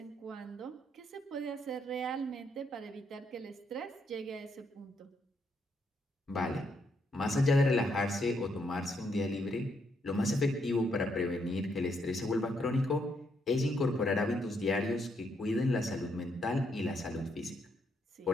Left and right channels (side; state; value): both; normal; correlation 0.75